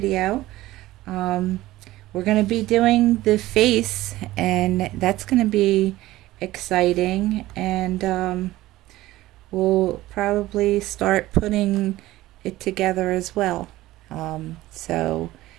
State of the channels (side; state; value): left; quieter; 16.7 dB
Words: We're going to be doing the face, and that's going to be exciting, and we'll probably start putting it together as well. So